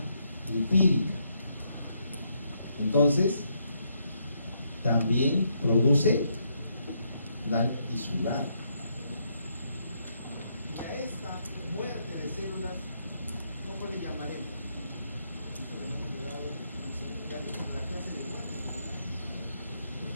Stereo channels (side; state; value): both; inverted; correlation -0.76